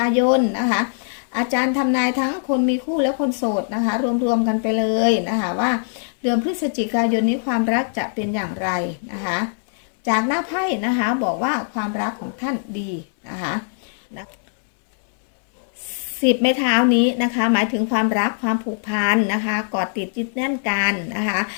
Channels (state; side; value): silent; right; 65 dB below the other